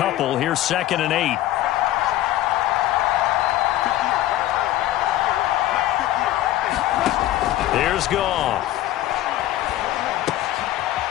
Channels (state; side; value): quieter; right; 14.4 dB